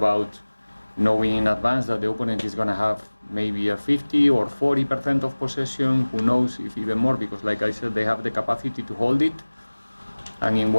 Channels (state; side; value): inverted; both; correlation -1.00